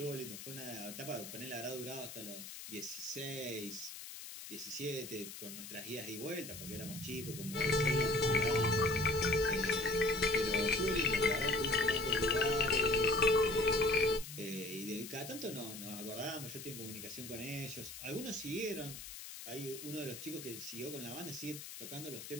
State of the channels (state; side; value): noise; left; hiss, 11 dB below the sound